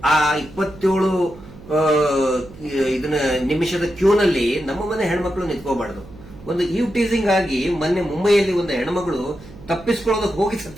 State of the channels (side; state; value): right; noise; hum, 19 dB below the sound